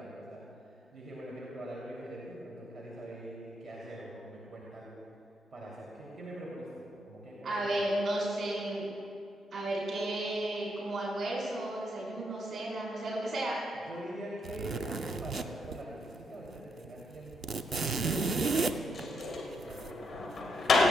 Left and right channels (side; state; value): both; normal; correlation 0.78